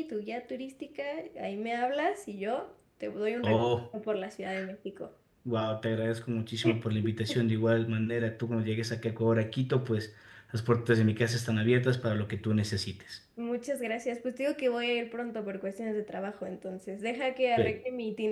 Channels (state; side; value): identical; both; correlation 1.00